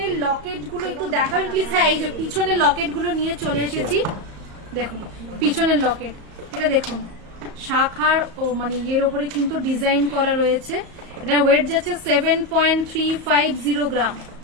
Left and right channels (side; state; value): left; late; 34 ms